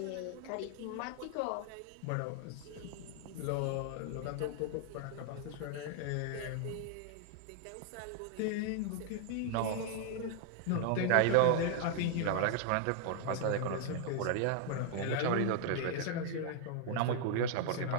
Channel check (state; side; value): different; both; correlation 0.00